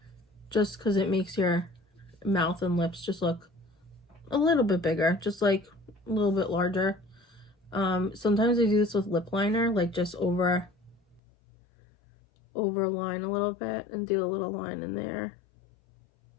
Just because it makes your mouth and lips just look a little bit bigger. Just like a little bit larger. Sometimes I do this with lip liner, like just overline a little bit and do a little line in there.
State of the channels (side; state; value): right; drops out; at 11.2 s